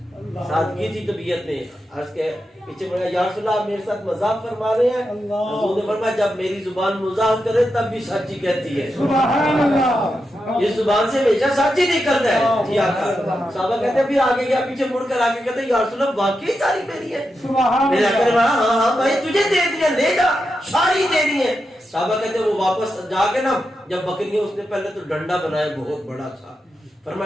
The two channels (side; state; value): both; normal; correlation 0.87